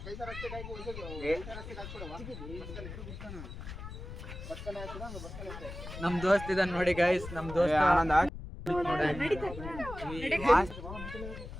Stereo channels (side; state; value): left; noise; rumble, 10 dB below the sound